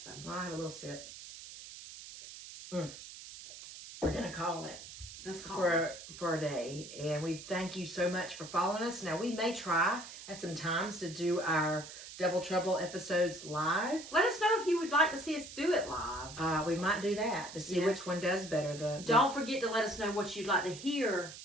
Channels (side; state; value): right; noise; hiss, 13 dB below the sound